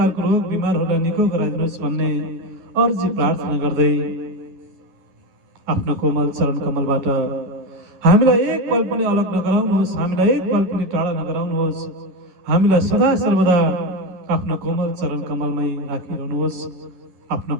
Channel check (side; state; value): left; late; 11 ms